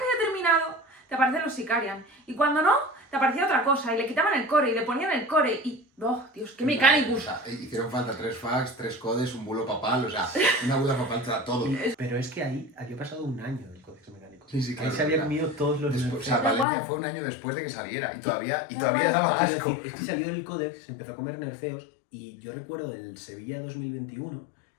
había terminado, te aparecen los Sicarian. Y cuando no, te aparecía otra cosa. Y le quitaban el core y le ponían el core. Y, ¡oh, Dios, qué O Mechanicus! sea, hicieron falta 3 fax, 3 codes, un bulo papal, o sea, una buda papal te da todo. Pero es que ahí había pasado un año del Codex Mecánico. Sí, claro, Ahí se había claro. comido todos los Después, o sea, nerfeos. Valencia igual. fue un año después de que saliera y todavía igual. daba Quiero asco. decir, es que salió el Codex, se empezó a comer nerfeos y yo recuerdo el Sevilla 2021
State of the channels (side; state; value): right; drops out; at 16.7 s